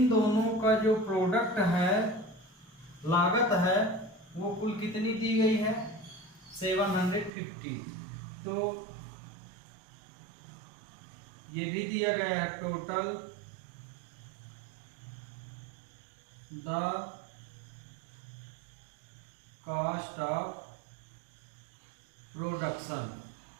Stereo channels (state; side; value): drops out; left; at 7.3 s